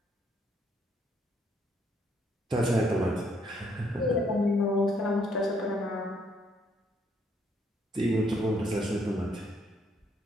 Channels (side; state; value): both; normal; correlation 0.70